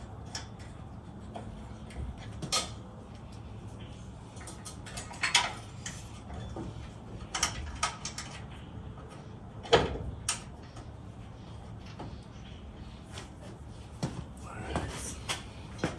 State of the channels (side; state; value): both; identical; correlation 1.00